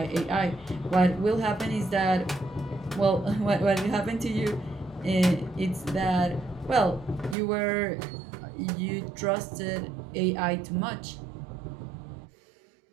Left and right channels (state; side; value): drops out; left; at 7.4 s